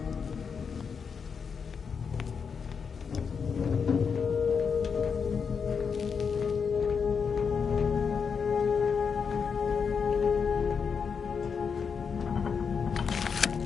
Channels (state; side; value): quieter; right; 6.1 dB